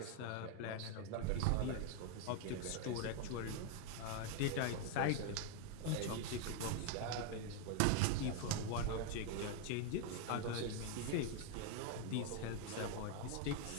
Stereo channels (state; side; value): different; both; correlation 0.00